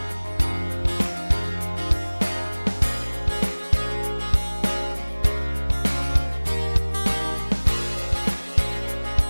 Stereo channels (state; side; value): inverted; both; correlation -1.00